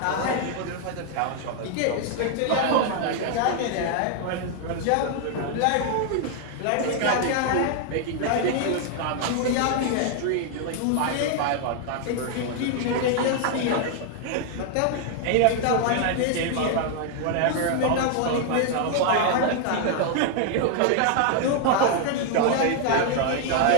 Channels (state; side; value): different; both; correlation 0.00